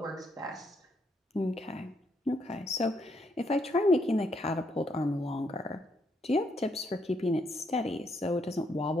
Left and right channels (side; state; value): both; normal; correlation 0.75